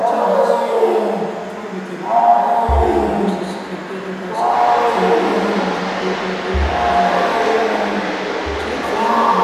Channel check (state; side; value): identical; both; correlation 1.00